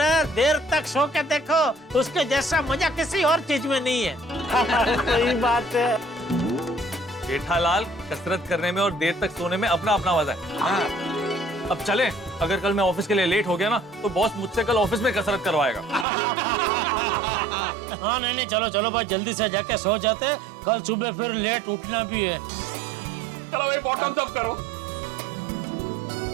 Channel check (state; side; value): drops out; left; at 16.1 s